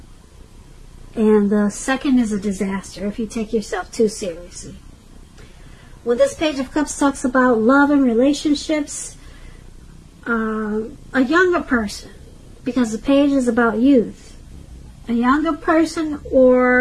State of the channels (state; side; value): identical; both; correlation 1.00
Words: and the second is a disaster if you take yourself too seriously. When this Page of Cups talks about love and relationships, a younger person, because the page is about youth, a younger person